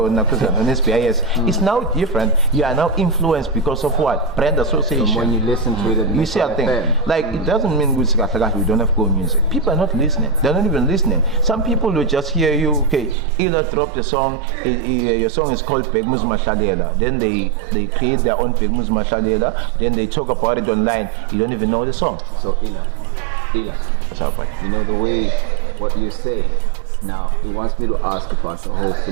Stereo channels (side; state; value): left; drops out; at 13.2 s